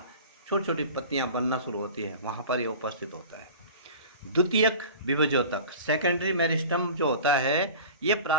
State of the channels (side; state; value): both; inverted; correlation -0.38